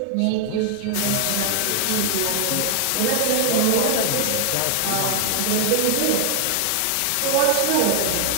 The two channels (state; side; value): different; both; correlation 0.00